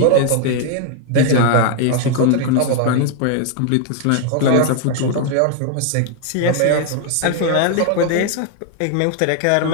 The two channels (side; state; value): both; different; correlation 0.00